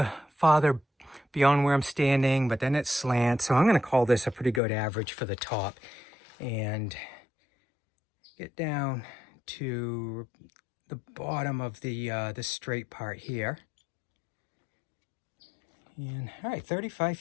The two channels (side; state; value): right; drops out; at 4.6 s